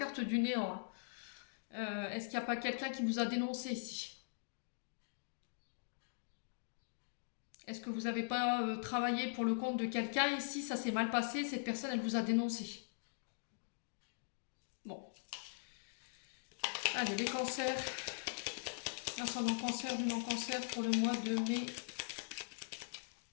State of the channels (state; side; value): silent; right; digital silence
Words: du néant. Hein. Est-ce qu'il n'y a pas quelqu'un qui vous a dénoncé ici? Est-ce que vous n'avez pas travaillé pour le compte de quelqu'un ici? Ça s'est mal passé, cette personne, elle vous a dénoncé. Bon. Allez, les cancers. Ascendant cancer, lunan cancer pour le mois de mai.